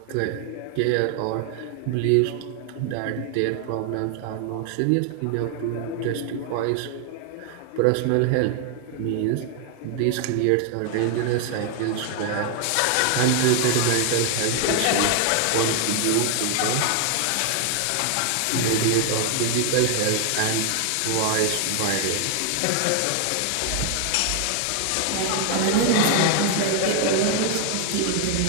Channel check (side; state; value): both; different; correlation 0.00